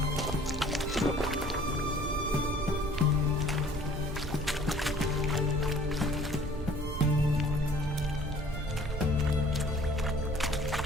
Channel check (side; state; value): both; normal; correlation 0.53